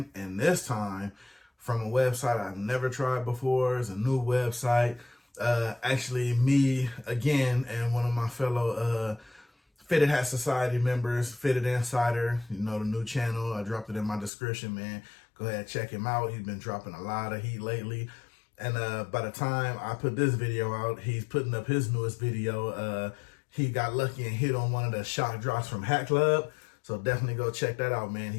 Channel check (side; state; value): right; drops out; at 14.3 s